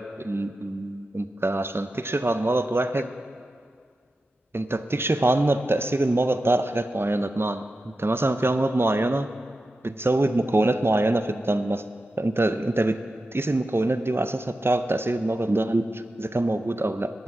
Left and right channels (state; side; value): normal; both; correlation 0.91